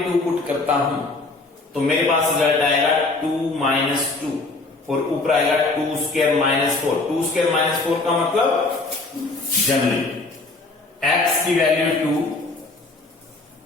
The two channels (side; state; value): right; quieter; 3.4 dB